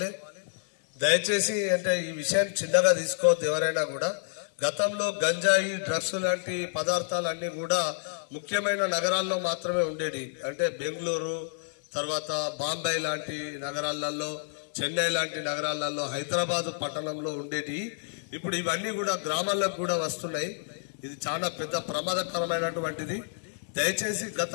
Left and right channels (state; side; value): silent; right; digital silence